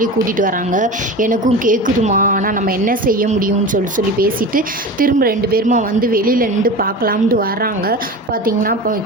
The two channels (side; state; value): both; normal; correlation 0.30